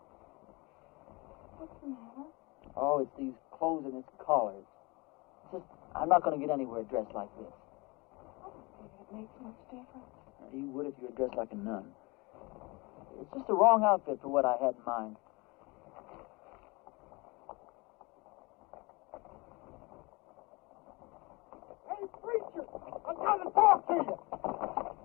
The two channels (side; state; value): right; quieter; 25.8 dB